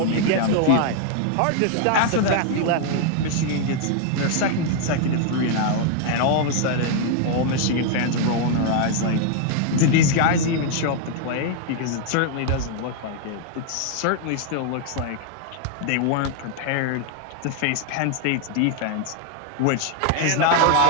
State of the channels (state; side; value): different; both; correlation 0.00